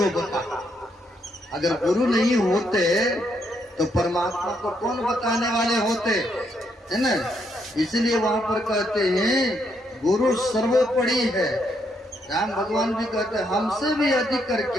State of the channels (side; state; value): both; normal; correlation 0.76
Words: बता। अगर गुरु नहीं होते तो परमात्मा को कौन बताने वाले होते, है ना। इसलिए वहां पर कहते हैं गुरु सर्वोपरि है। राम भगवान भी कहते हैं हमसे भी अधिक